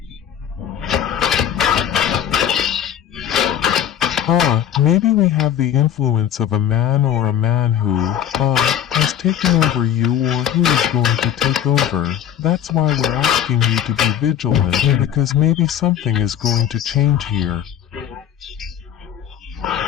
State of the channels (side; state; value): right; quieter; 10.0 dB